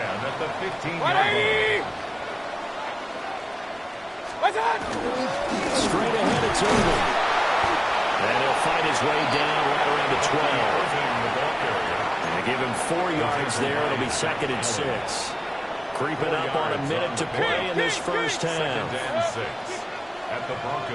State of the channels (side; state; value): both; identical; correlation 1.00